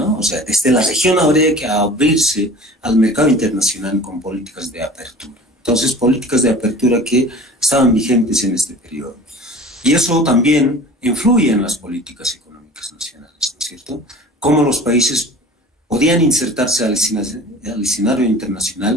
O sea, desde la región habría que abrirse al mercado internacional con políticas de apertura. Entonces, políticas de apertura que estaban vigentes en este periodo. Y eso también influye en las políticas económicas nacionales, ¿no es cierto? Cómo los países podían insertarse al escenario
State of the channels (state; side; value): normal; both; correlation 0.42